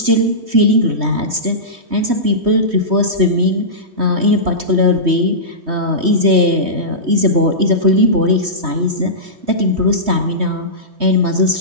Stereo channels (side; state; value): left; late; 3.1 ms